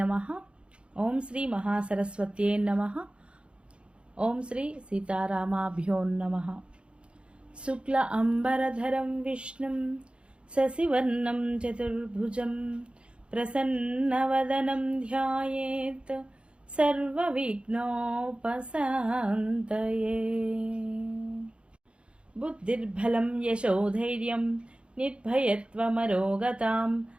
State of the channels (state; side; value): late; left; 0.057 ms